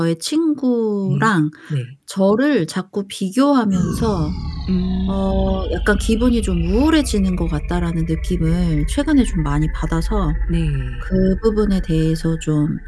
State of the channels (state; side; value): identical; both; correlation 1.00